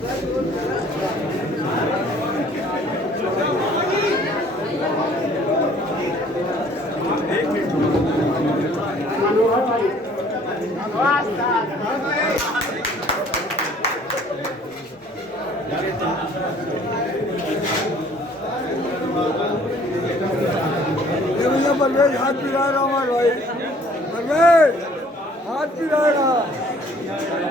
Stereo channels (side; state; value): both; normal; correlation 0.56